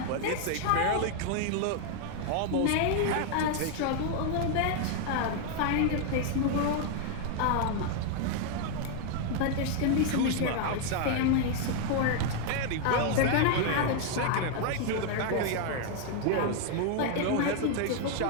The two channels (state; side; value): different; both; correlation 0.00